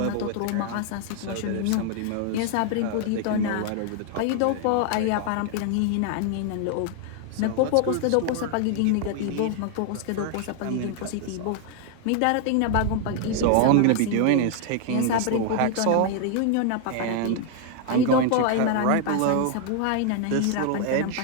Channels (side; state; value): both; different; correlation 0.00